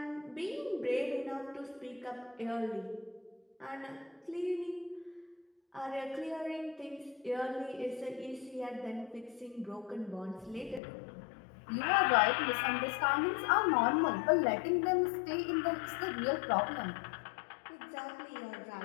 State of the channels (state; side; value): drops out; right; at 10.8 s